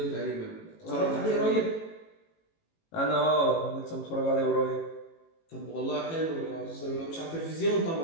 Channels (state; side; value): late; right; 18 ms